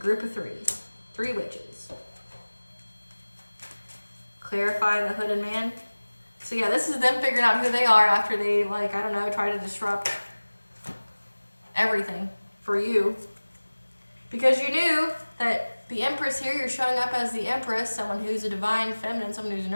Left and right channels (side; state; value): both; inverted; correlation -1.00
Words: of three witches. Clarify, the hooded man. So yeah, this is them figuring out who they are after they, like, I don't know, try to disrupt everything for you. Because you knew that the Empress here, you're showing up as the Empress, someone who's a divine feminine, someone who's